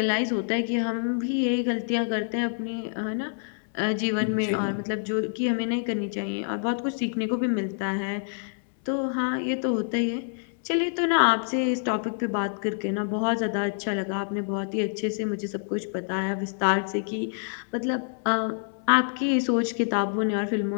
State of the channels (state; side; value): silent; right; 60 dB below the other